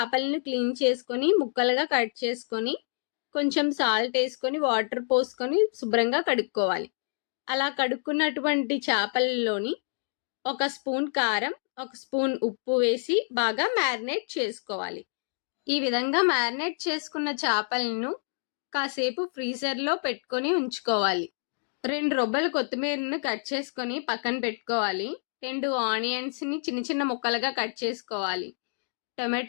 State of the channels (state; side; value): silent; right; 59 dB below the other